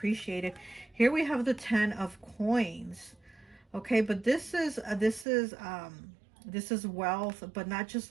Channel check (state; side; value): drops out; left; at 5.2 s